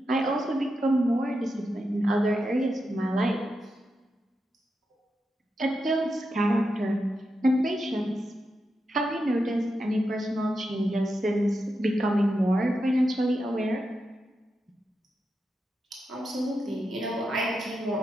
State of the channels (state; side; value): normal; both; correlation 0.87